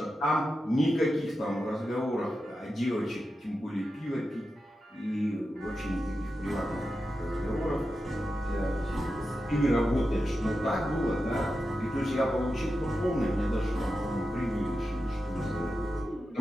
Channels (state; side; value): normal; both; correlation 0.90